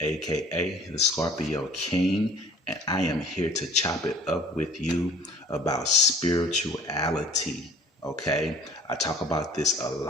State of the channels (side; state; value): both; normal; correlation 0.50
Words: aka the Scorpio King, and I am here to chop it up with you about spirituality. Okay, I talk about this a